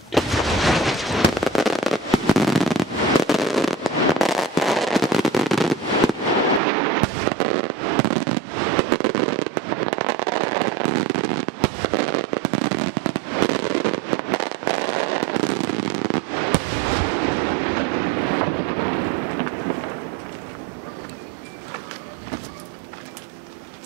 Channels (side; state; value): left; drops out; at 6.6 s